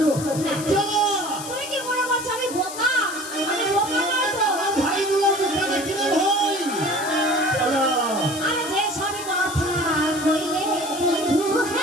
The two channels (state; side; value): noise; left; hiss, 10 dB below the sound